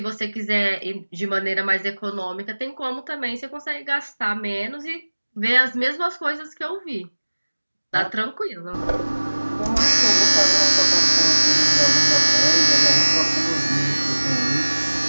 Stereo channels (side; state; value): both; inverted; correlation -1.00